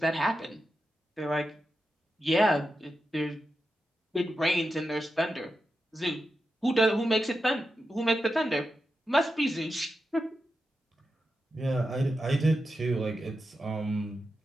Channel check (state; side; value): normal; both; correlation 0.89